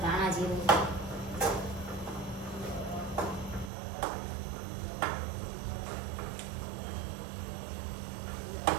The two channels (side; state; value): left; drops out; at 3.7 s